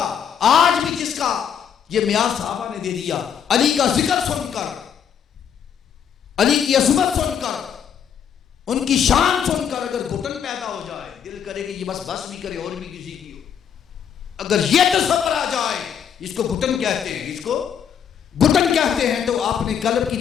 آج بھی جس کا یہ معیار صحابہ نے دے دیا، علی کا ذکر سن کر، علی کی عظمت سن کر، ان کی شان سن کر اگر گھٹن پیدا ہو جائے، دل کرے کہ یہ بس بھی کرے اور بھی کسی کی ہو، اگر یہ تصور آ جائے، اس کو گھٹن کہتے ہیں، اس کو گھٹن کہتے ہیں، تو آپ نے قلب کی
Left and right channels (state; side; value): quieter; right; 8.2 dB